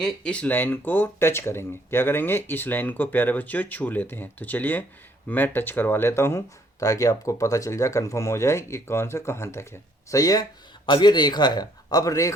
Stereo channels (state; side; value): normal; both; correlation 0.65